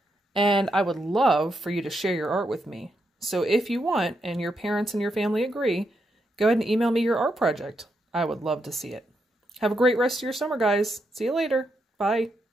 And I would love for you to share your art with me. So if you want, and your parents and your family agree, go ahead and email me your art project. I would love to see it. Have a great rest of your summer, guys. See you later. Bye.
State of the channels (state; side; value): normal; both; correlation 0.81